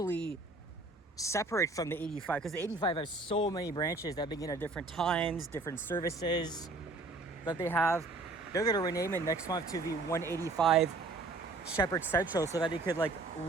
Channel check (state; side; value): quieter; left; 3.2 dB